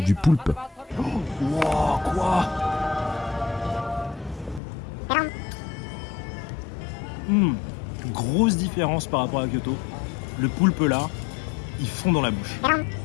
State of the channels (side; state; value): right; drops out; at 4.6 s